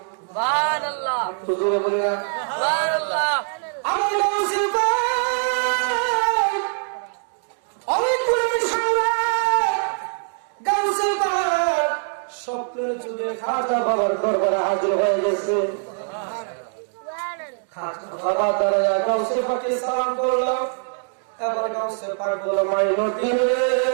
সুবহানাল্লাহ। হুজুরে বলি না সুবহানাল্লাহ। আমার গাউসে পাক অনেক পুরনো সম্রাট গাউসে পাক স্বপ্নের যুগে খাজা বাবার দরবারে হাজির হয়ে গেছে। খাজা বাবা দাঁড়ায়া গাউসে পাকে সালাম করলো। এবার গাউসে পাক বলল, মাইনুদ্দিন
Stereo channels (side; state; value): left; silent; digital silence